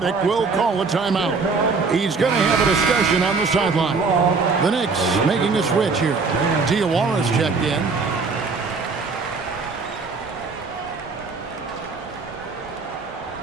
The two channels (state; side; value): quieter; left; 4.5 dB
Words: will call a timeout. He's going to have a discussion on the sideline. The Knicks making a switch here. Diawara's checked in.